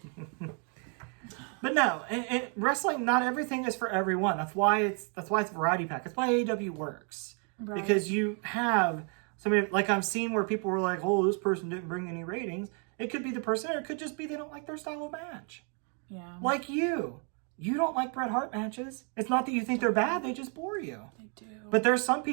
But no, wrestling, not everything is for everyone. That's why it's variety pack. That's why AEW works. Right. Because you have somebody, like I've seen where people were like, oh, this person didn't bring any ratings. It could be the person, or it could just be they don't like their style of match. Yeah. Like you. You don't like Bret Hart matches. It's not that you think they're bad, they just bore you. They do. But there's some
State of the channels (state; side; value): quieter; left; 39.2 dB